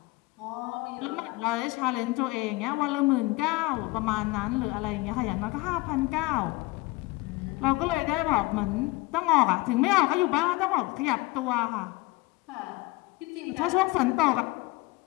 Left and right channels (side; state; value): right; quieter; 21.6 dB